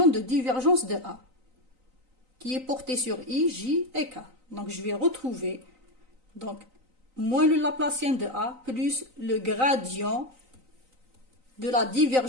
de divergence de a qui est porté sur i, j et k. Donc, je vais retrouver donc moins le Laplacien de a plus le gradient de la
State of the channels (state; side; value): late; left; 3.9 ms